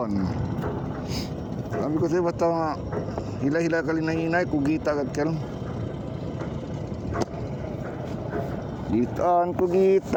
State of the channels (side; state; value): both; identical; correlation 1.00